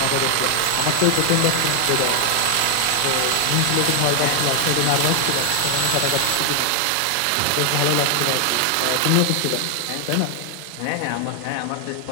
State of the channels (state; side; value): different; both; correlation 0.00